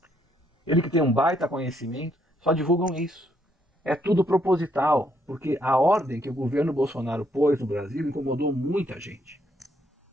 Ele que tem um baita conhecimento, só divulgam isso. É tudo proposital, porque a ordem que o governo Bolsonaro pôs no Brasil incomodou muita gente.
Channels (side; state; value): both; normal; correlation 0.72